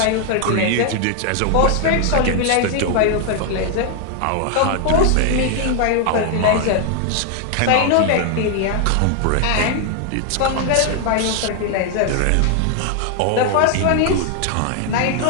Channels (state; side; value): different; both; correlation 0.00